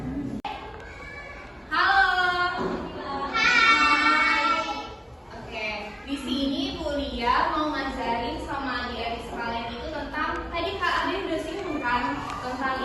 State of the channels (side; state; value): both; identical; correlation 1.00